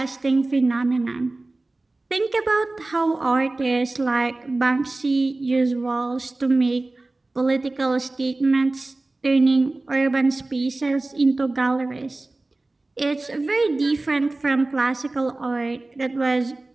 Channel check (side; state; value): left; quieter; 3.0 dB